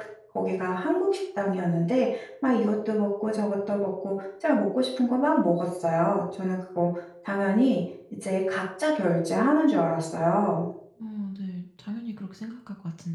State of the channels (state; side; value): identical; both; correlation 1.00